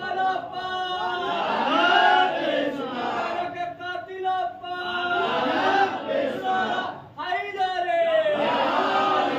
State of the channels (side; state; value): both; identical; correlation 1.00